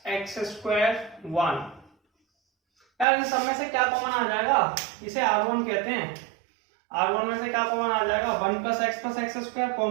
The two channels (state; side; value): drops out; left; at 3.1 s